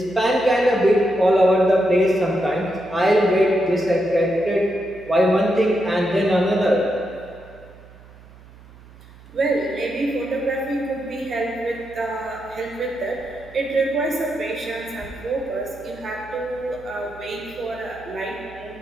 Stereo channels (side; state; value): right; noise; hum, 22 dB below the sound